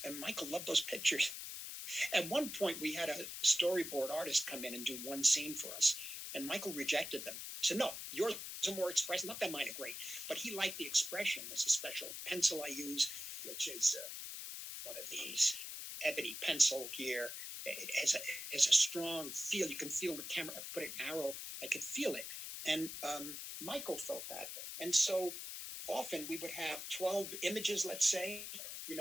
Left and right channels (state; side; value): noise; left; hiss, 7 dB below the sound